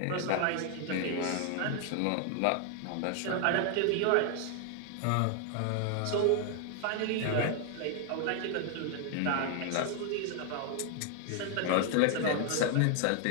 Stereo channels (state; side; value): different; both; correlation 0.00